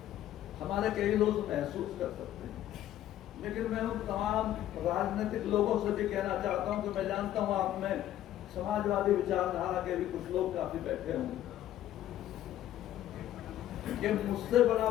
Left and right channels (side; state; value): right; quieter; 12.6 dB